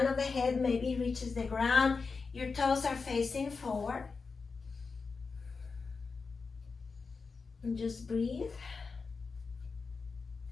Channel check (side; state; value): right; quieter; 4.7 dB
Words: of the head maybe reaches the ground. Your toes are facing forward. And just breathe.